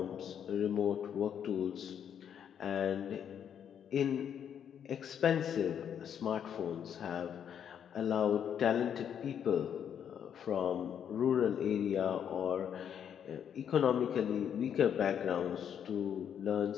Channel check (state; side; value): quieter; right; 8.6 dB